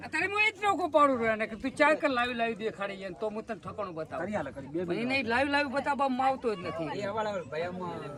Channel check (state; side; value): identical; both; correlation 1.00